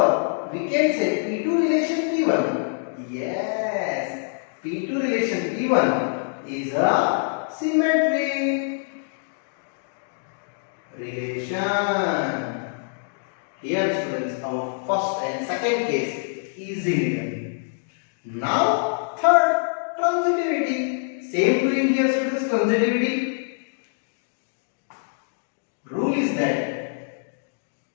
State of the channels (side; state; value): right; silent; digital silence